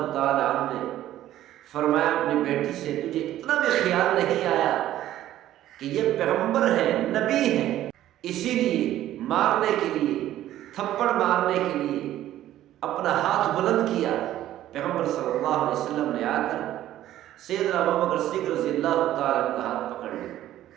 تعالی عنہ نے فرمایا اپنی بیٹی سے تجھے اتنا بھی خیال نہیں آیا کہ یہ پیغمبر ہے، نبی ہے، اسی لیے مارنے کے لیے، تھپڑ مارنے کے لیے اپنا ہاتھ بلند کیا۔ پیغمبر صلی اللہ علیہ وسلم نے آ کر سیدنا ابوبکر صدیق رضی اللہ تعالی عنہ کا ہاتھ پکڑ لیا،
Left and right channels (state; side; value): quieter; left; 13.2 dB